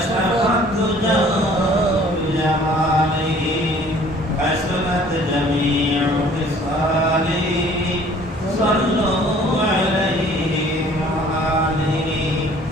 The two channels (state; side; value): normal; both; correlation 0.54